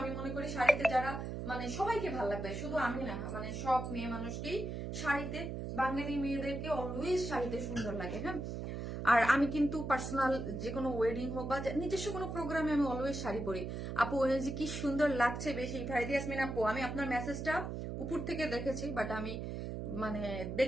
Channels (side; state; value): right; noise; hum, 5 dB below the sound